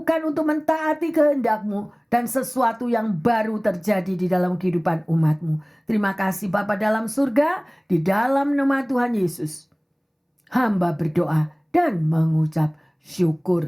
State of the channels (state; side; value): identical; both; correlation 1.00